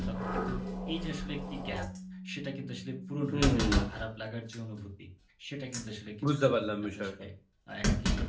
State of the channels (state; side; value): identical; both; correlation 1.00